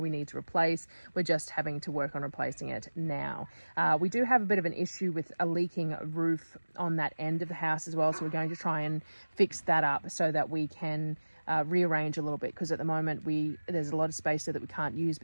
we need to replace. We're just having to work on replacing it now. We do have a bit of an issue with a leaking roof on that end of the house as well, so we're going to try and fix that up so that we can rearrange a little bit, because at the moment there's a lot of space there that we can't use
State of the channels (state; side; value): inverted; both; correlation -1.00